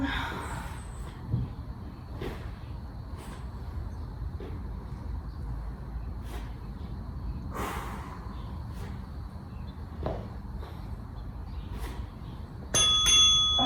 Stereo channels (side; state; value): both; identical; correlation 1.00